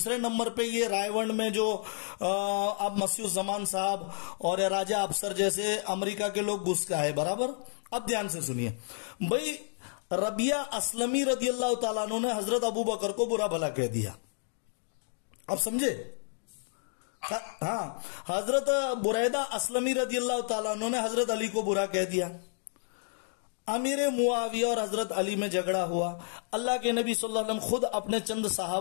نمبر پہ یہ رائے ونڈ میں جو اب مسیح الزمان صاحب اور راجہ افسر جیسے امریکہ کے لوگ گھس کا ہے برابر. اب دھیان سے سنیے بھائی، ربیہ اسلمی رضی اللہ تعالیٰ عنہ نے حضرت ابو بکر کو برا بھلا کہہ دیا. اب سمجھے؟ ہاں، حضرت بریدہ اسلمی رضی اللہ تعالیٰ عنہ نے حضرت علی کو برا کہہ دیا. امیر معاویہ اور حضرت علی میں جھگڑا ہوا. اللہ کے نبی صلی اللہ علیہ وسلم خود اپنے چند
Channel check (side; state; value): right; silent; digital silence